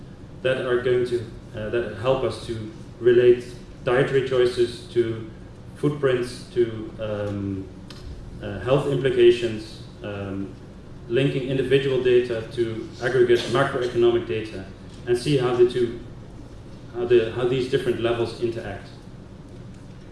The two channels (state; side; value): identical; both; correlation 1.00